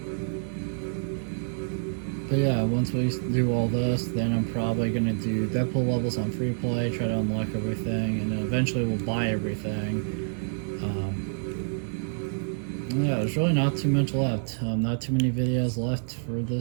But yeah, once we do all this, then I'm probably gonna do Deadpool levels on free play, try to unlock everything, and then eventually we'll buy everything. Yeah, there's really not too much left. Not too many videos left for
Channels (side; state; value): left; silent; 60 dB below the other